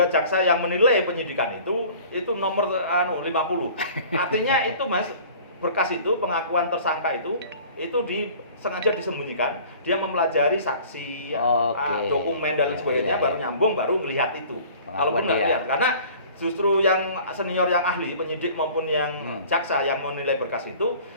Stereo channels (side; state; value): both; inverted; correlation -0.47